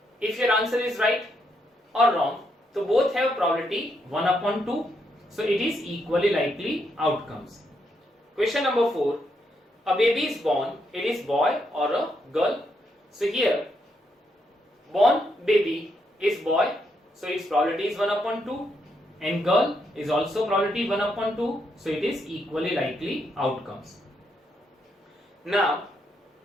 if your answer is right or wrong, so both have probability 1 upon 2. So it is equally likely outcomes. Question number 4. A baby is born. It is boy or a girl. So here, born baby is boy. So its probability is 1 upon 2. And girl is also probability 1 upon 2. So it is equally likely outcomes. Now,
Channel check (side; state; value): both; normal; correlation 0.78